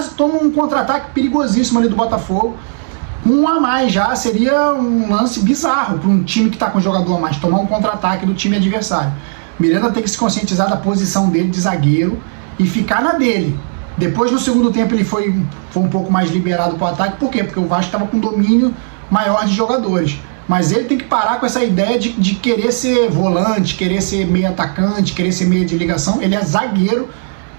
toma um contra-ataque perigosíssimo ali do Botafogo. Um a mais já seria um lance bizarro para um time que está com um jogador a mais, tomar um contra-ataque do time adversário. Miranda tem que se conscientizar da posição dele de zagueiro e ficar na dele. Depois, no segundo tempo, ele foi um pouco mais liberado para o ataque. Por quê? Porque o Vasco estava com domínio maior de jogadores. Mas ele tem que parar com essa ideia de querer ser volante, querer ser meio atacante, querer ser meio de ligação. Ele é zagueiro,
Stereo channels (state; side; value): silent; left; digital silence